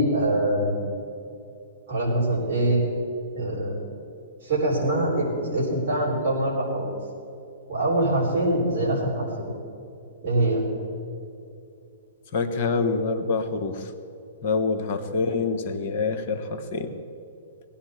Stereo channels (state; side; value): inverted; both; correlation -0.50